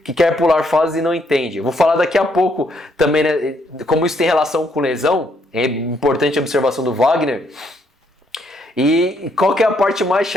que quer pular fases e não entende. Eu vou falar daqui a pouco também, né, como isso tem relação com lesão, é importante a observação do Wagner. E qual que é a parte mais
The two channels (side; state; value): both; normal; correlation 0.72